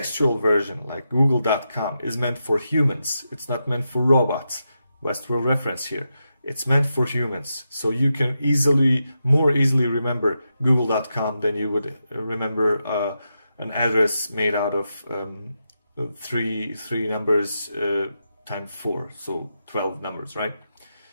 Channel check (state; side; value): inverted; both; correlation -0.87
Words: version, like google.com, is meant for humans. It's not meant for robots. Westworld reference here. It's meant for humans. So you can more easily remember google.com than you would remember an address made out of three numbers times 4, so 12 numbers, right?